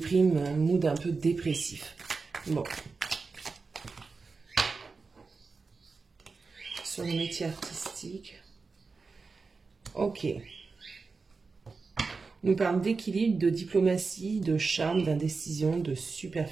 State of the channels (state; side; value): quieter; left; 4.4 dB